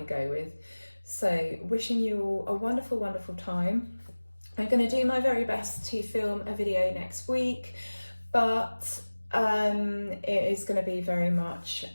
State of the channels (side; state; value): both; inverted; correlation -1.00